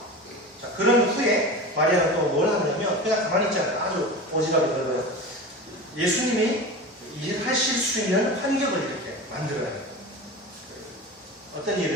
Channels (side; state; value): both; normal; correlation 0.30